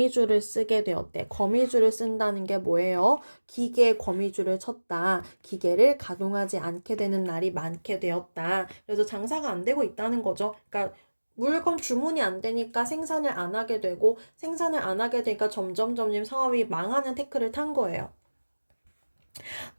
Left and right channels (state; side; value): inverted; both; correlation -1.00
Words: 쓰게 되었대. 거미줄을 쓴다는 게 뭐예요? 기계에 거미줄을 쳤다. 기계를 가동하지 않게 되는 날이 많게 되었다. 그래서 장사가 안 되고 있다는 거죠. 그러니까 물건 주문이 안 되니까 생산을 안 하게 되고, 생산을 안 하게 되니까 점점 사업이 망하는 태클을 탄 거예요.